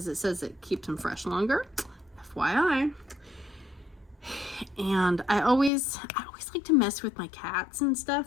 it says it keeps them fresh longer. FYI. And I always like to mess with my cats and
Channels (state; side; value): drops out; right; at 5.7 s